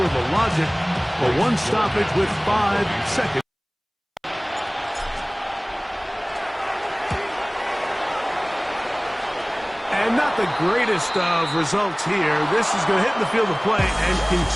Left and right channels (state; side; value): identical; both; correlation 1.00